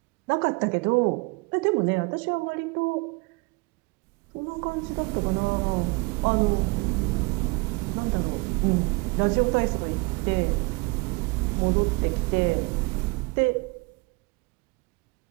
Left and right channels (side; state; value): left; quieter; 27.9 dB